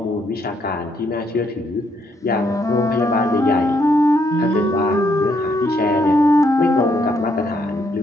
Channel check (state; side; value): normal; both; correlation 0.73